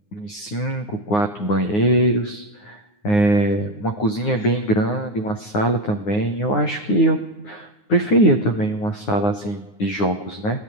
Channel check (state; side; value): late; right; 9.6 ms